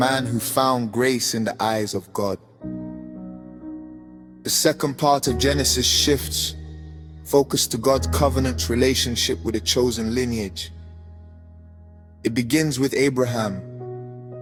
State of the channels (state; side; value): identical; both; correlation 1.00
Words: who found grace in the eyes of God. The second part of Genesis shifts focus to God's covenant relationship with a chosen lineage. It begins with Abraham,